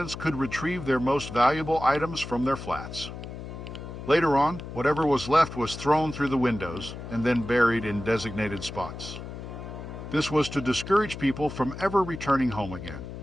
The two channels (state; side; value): noise; left; hum, 10 dB below the sound